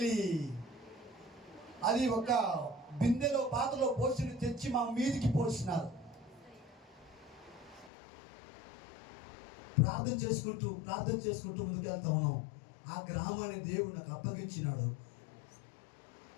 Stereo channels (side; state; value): right; drops out; at 7.9 s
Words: అది ఒక బిందెలో పాతలో పోసి తెచ్చి మా మీదికి పోసినారు. ప్రార్థన చేసుకుంటూ ముందుకెళ్తా ఉన్నాం. ఆ గ్రామాన్ని దేవుడు నాకు అప్పగించినాడు.